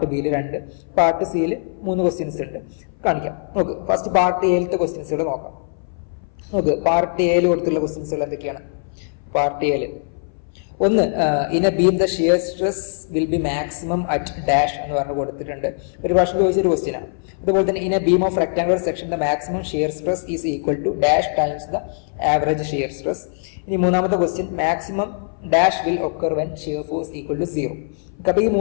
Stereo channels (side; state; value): right; silent; 59 dB below the other